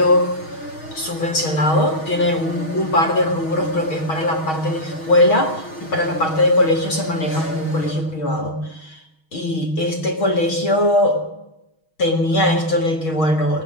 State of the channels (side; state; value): right; late; 6.3 ms